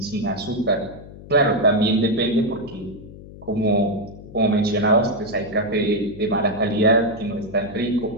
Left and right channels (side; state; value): left; noise; hum, 16 dB below the sound